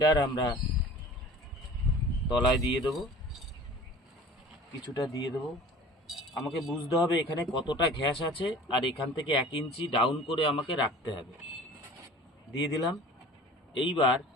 আমরা তলায় দিয়ে দেবো, কিছুটা দিয়ে দেবো। আমাকে বুঝতে হবে এখানে কতটা ঘ্যাস আছে, আর এখান থেকে 1 ইঞ্চি ডাউন করে আমাকে রাখতে হবে। দিয়ে দিলাম। এইবার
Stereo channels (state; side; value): normal; both; correlation 0.43